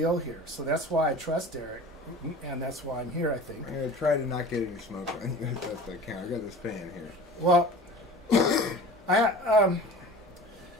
here. So that's why I trust Eric, and that's why I'm here, I think. I'm going to try to not get any smoke on you. That's I can. I got this fan here. Well,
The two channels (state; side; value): normal; both; correlation 0.40